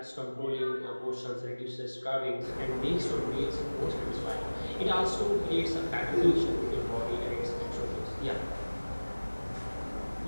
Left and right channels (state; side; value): inverted; both; correlation -1.00